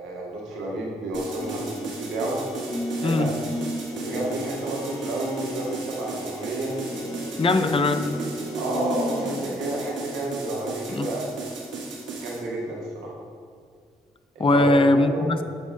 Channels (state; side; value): normal; both; correlation 0.68